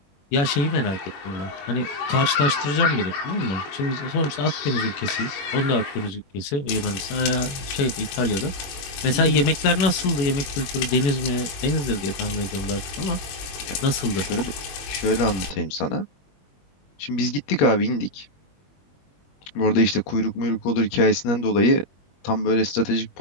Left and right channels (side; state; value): right; late; 21 ms